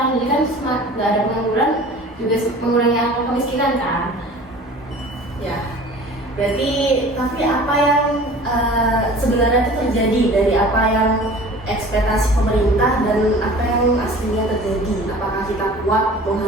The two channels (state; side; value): normal; both; correlation 0.43